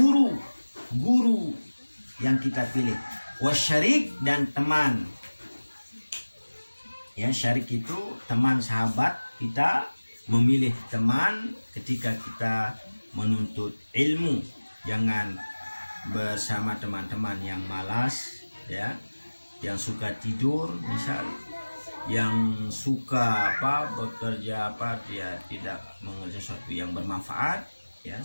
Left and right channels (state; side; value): inverted; both; correlation -1.00